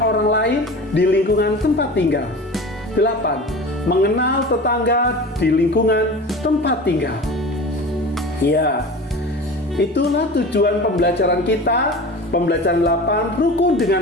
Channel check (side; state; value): both; normal; correlation 0.35